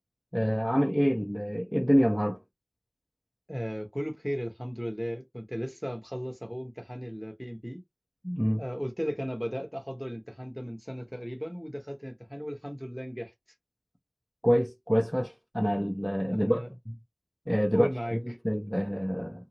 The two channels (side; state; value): both; identical; correlation 1.00